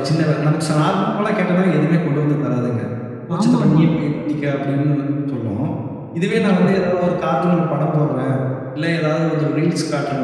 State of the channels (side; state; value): both; identical; correlation 1.00